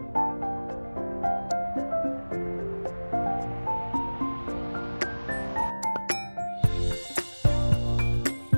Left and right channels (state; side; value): inverted; both; correlation -1.00